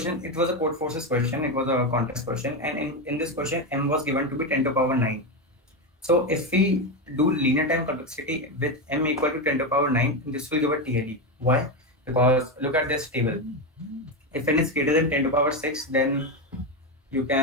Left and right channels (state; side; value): normal; both; correlation 0.11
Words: it was a CodeForces question, it was a contest question, and in this question, m was given to be 10 to the power 9. So if we do linear time complexity with m equal to 10 to the power 9, this will give a TLE. Why? Because look at this table. If n is greater than 10 to the power 6, then you